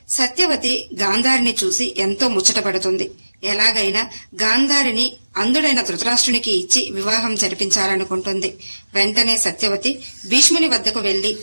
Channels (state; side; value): inverted; both; correlation -1.00